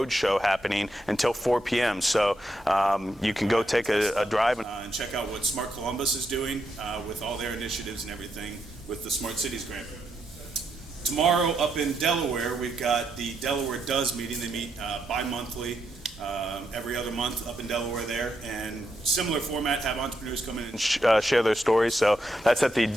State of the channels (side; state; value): both; normal; correlation 0.81